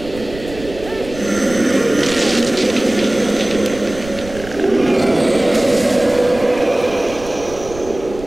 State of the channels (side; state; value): right; noise; rumble, 15 dB below the sound